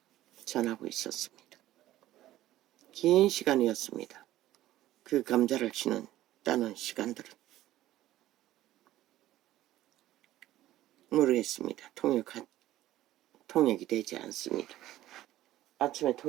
전하고 있었습니다. 긴 시간이었습니다. 그 감자를 따는 시간들은 모르겠습니다. 통역이 되지 않습니다. 아침에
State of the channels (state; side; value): quieter; left; 14.6 dB